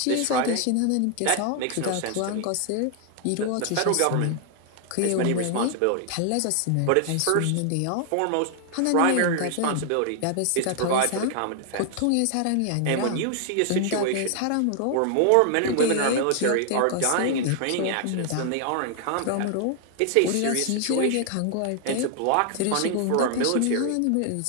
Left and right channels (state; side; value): different; both; correlation 0.00